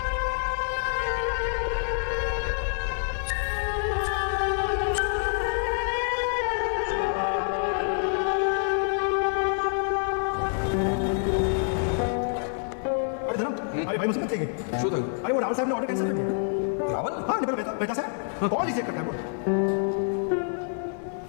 अरे भाई मुझे मत चाहिए। શું થયું? अरे वो रावल साहब ने ऑर्डर कैंसिल कर दिया। रावल? हाँ निकल बेटा सर कॉल रिजेक्ट करता है वो।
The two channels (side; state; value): right; silent; 60 dB below the other